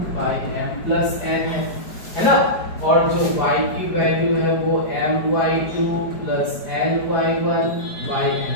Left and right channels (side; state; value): right; late; 5.0 ms